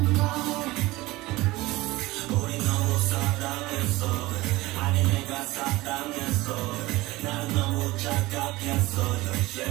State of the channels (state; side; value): quieter; left; 19.6 dB